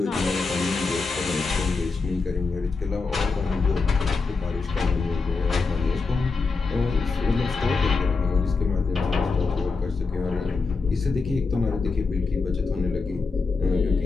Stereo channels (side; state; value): right; quieter; 4.3 dB